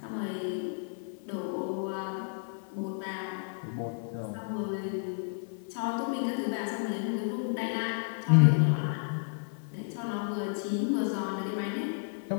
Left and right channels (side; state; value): right; silent; digital silence